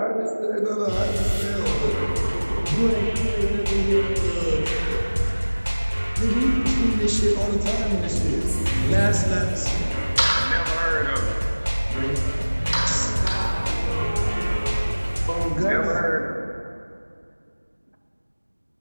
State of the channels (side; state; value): both; inverted; correlation -1.00